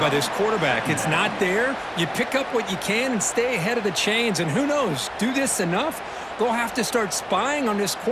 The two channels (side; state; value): both; identical; correlation 1.00